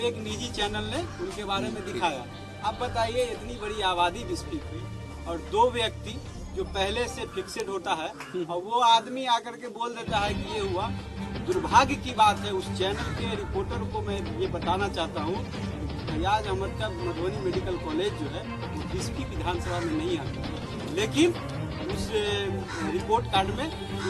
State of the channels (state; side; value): identical; both; correlation 1.00